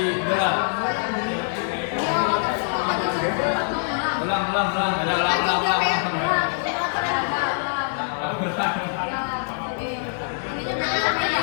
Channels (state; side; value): silent; right; 63 dB below the other